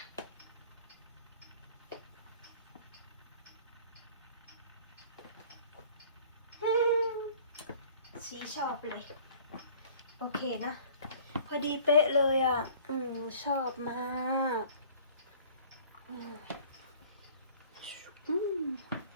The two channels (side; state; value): both; inverted; correlation -0.50